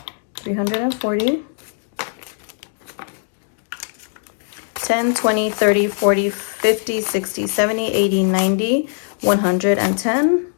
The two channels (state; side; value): silent; right; digital silence